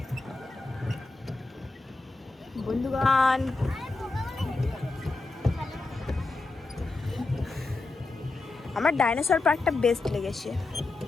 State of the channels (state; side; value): quieter; right; 3.4 dB